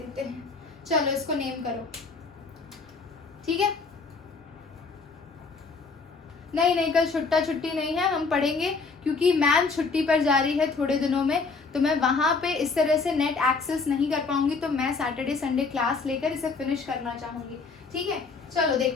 हैं। चलो इसको नेम करो, ठीक है। नहीं कल छुट्टी नहीं है, हम पढ़ेंगे क्योंकि मैम छुट्टी पर जा रही है थोड़े दिनों में, तो मैं वहां पे इस तरह से नेट एक्सेस नहीं कर पाऊंगी, तो मैं सैटरडे संडे क्लास लेकर इसे फिनिश करना चाहूंगी, ठीक है। चलो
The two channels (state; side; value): quieter; right; 4.4 dB